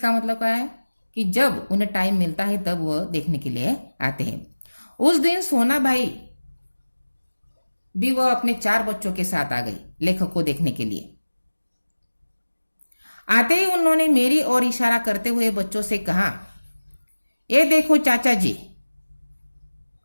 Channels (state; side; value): inverted; both; correlation -1.00